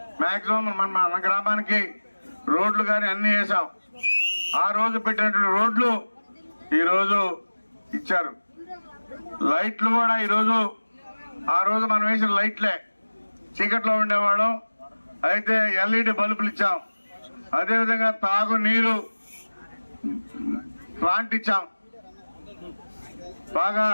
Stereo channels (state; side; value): inverted; both; correlation -1.00